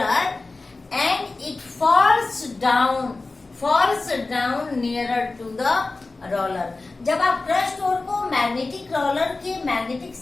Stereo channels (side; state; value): right; quieter; 3.4 dB